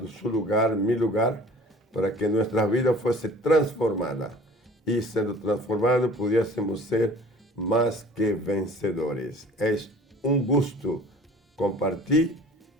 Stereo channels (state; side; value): normal; both; correlation 0.47